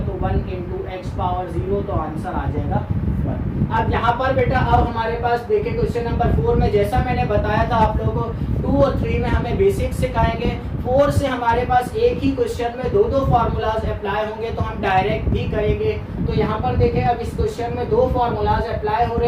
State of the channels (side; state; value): both; identical; correlation 1.00